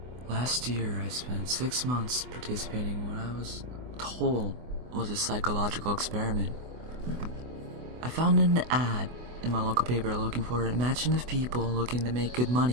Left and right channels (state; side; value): late; left; 24 ms